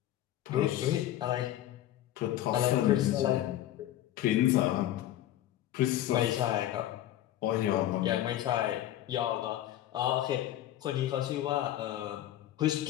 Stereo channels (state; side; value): quieter; right; 13.2 dB